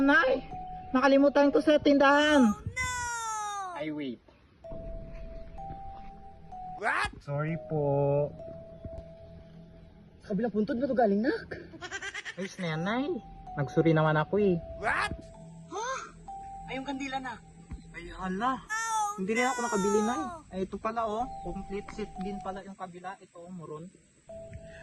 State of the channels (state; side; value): identical; both; correlation 1.00